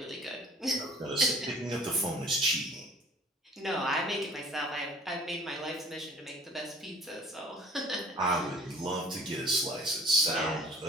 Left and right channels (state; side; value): normal; both; correlation 0.49